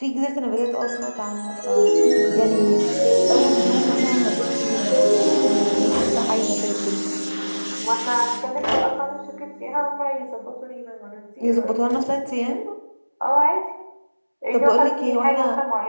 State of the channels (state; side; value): inverted; both; correlation -1.00